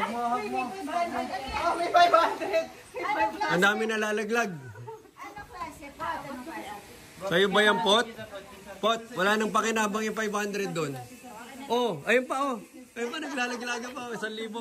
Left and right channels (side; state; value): both; identical; correlation 1.00